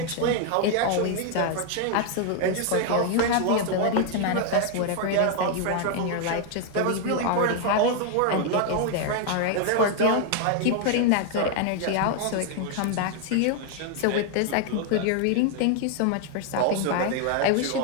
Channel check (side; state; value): both; different; correlation 0.00